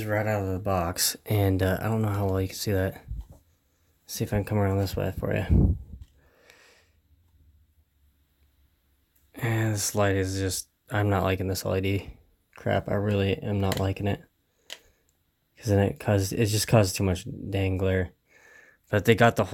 right out of the box, and I don't know how well you can see that. Let's see if I can come around this way for you. And this light is just, I'm not liking this LED crap. I really am not liking it, because then it just causes too much dang glare. But they got the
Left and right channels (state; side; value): identical; both; correlation 1.00